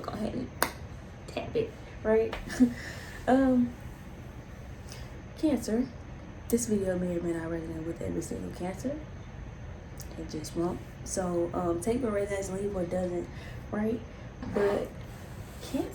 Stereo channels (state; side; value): identical; both; correlation 1.00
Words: ahead and tap it, right? Cancer. This video may or may not resonate with every single Cancer. It just won't. So, take what resonates, leave what doesn't, right? But